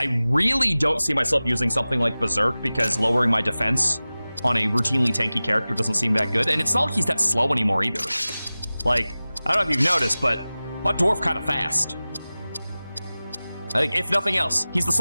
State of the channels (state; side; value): inverted; both; correlation -0.97